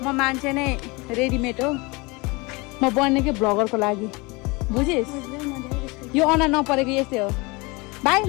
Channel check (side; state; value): right; quieter; 25.9 dB